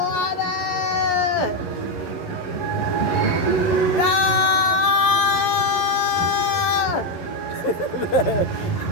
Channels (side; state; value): right; late; 11 ms